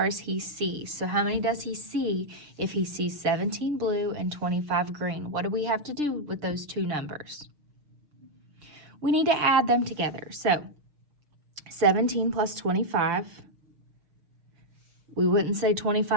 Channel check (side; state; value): left; late; 6.3 ms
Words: he sees. So how many does he see if he sees 17 blue and 25 green? What do we have to do with those 2 numbers? We need to add them together. So 17 plus 25. We wouldn't say